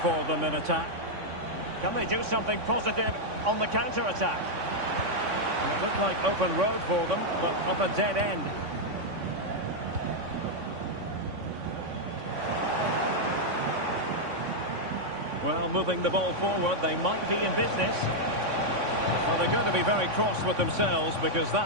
for them in attack. Can they do something positive on the counter-attack? It looked like open road for them, but up a dead end. Well, moving the ball forward, they might be in business. Well, they're going to be very cross with themselves because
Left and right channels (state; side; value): late; left; 3.5 ms